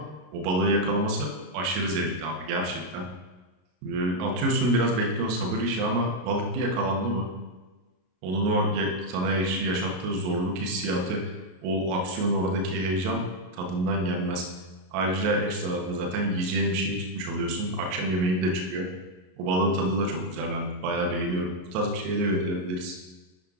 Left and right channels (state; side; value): late; left; 33 ms